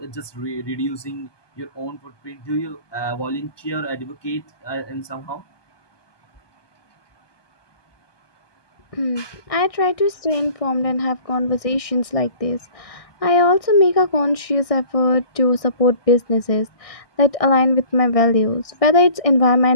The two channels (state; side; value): late; right; 1.6 ms